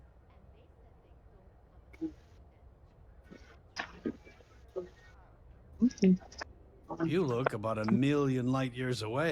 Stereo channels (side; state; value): both; identical; correlation 1.00